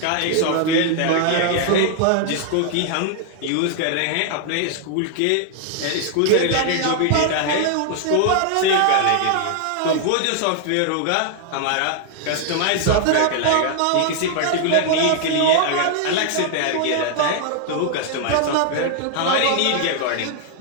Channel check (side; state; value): both; different; correlation 0.00